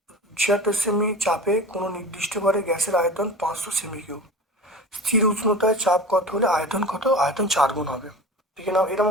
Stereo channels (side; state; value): both; normal; correlation 0.33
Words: 76 সেমি চাপে কোনো নির্দিষ্ট ঘরে গ্যাসের আয়তন 500 সেমি কিউব। স্থির উষ্ণতায় চাপ কত হলে আয়তন কত? আয়তন 4 গুণ হবে। দেখে নাও, এরকম